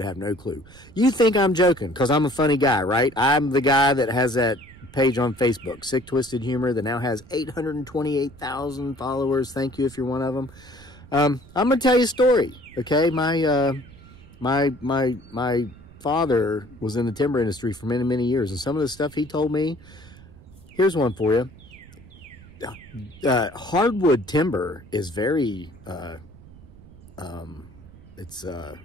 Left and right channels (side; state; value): right; noise; rumble, 21 dB below the sound